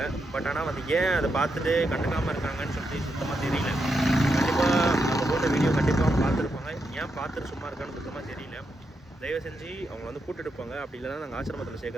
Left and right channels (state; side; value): normal; both; correlation 0.83